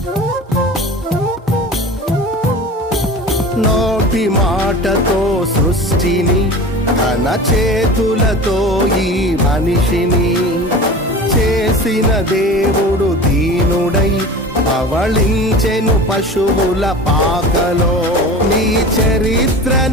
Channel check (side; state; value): both; normal; correlation 0.35